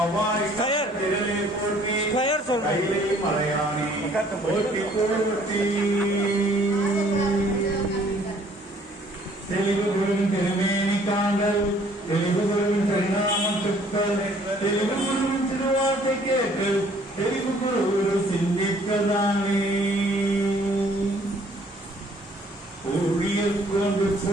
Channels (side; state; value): both; normal; correlation 0.59